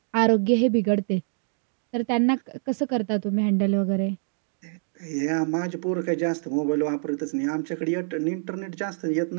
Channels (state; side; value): silent; left; digital silence